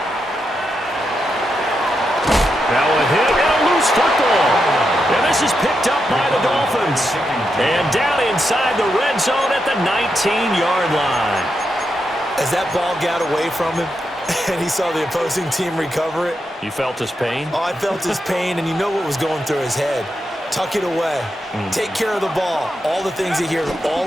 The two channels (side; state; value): both; normal; correlation 0.85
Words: Now a hit and a loose football. And this is picked up by the Dolphins. And down inside the red zone at the 19-yard line. As that ball got away from him and he saw the opposing team recover it. You felt his pain? Oh, I felt his pain, and you know what was going through his head. Tuck it away. Take care of the ball. All the things you hear all